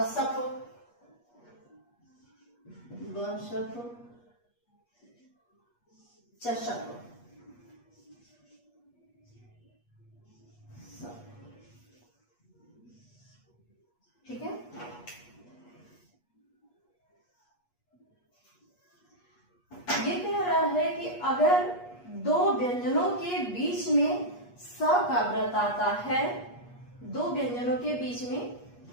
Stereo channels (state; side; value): late; right; 8.4 ms